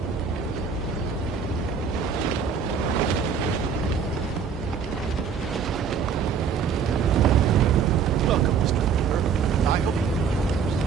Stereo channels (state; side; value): quieter; left; 6.4 dB